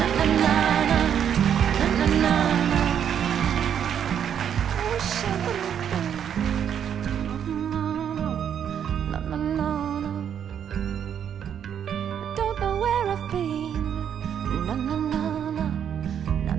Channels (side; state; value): left; quieter; 8.8 dB